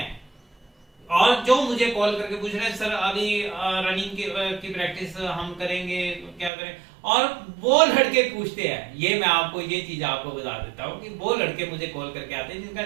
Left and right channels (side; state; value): left; drops out; at 6.5 s